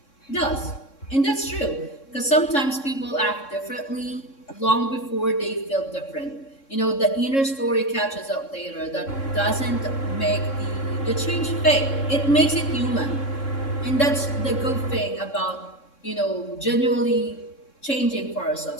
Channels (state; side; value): late; right; 3.6 ms